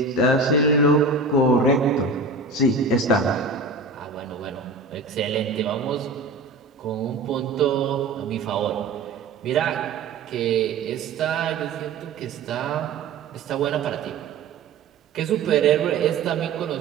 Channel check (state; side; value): quieter; left; 3.9 dB